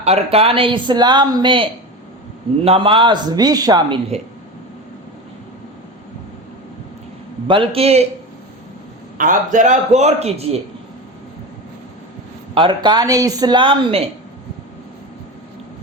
ارکان اسلام میں نماز بھی شامل ہے، بلکہ آپ ذرا غور کیجئے، ارکان اسلام میں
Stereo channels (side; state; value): both; normal; correlation 0.25